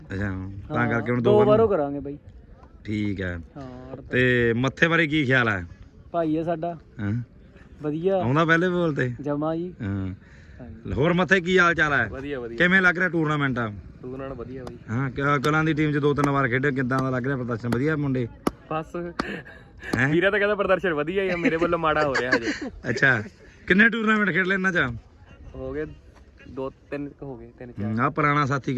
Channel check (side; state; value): both; identical; correlation 1.00